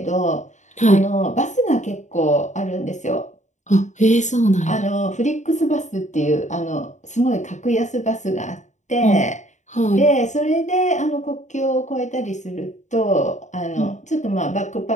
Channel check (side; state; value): right; late; 0.35 ms